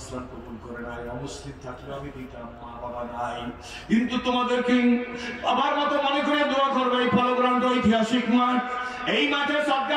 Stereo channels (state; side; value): identical; both; correlation 1.00